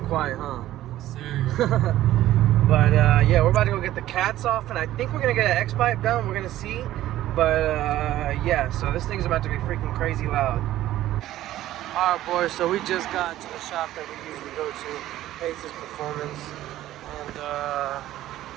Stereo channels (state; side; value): quieter; left; 14.1 dB